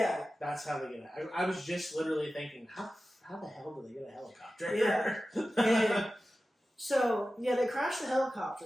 That's how they get it. I was just literally thinking, how the hell do they get a helicopter? Yeah. And so, they crashed the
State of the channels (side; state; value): both; normal; correlation 0.94